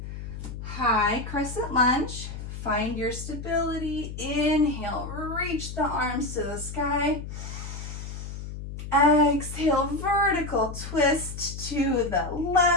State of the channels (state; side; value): noise; left; hum, 9 dB below the sound